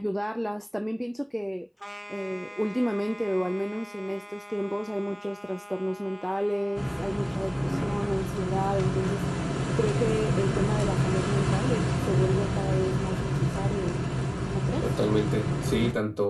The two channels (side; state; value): both; identical; correlation 1.00